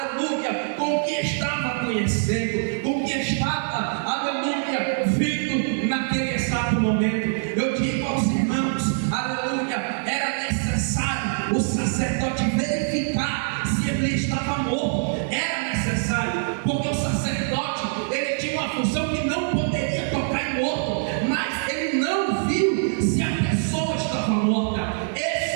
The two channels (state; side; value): silent; left; digital silence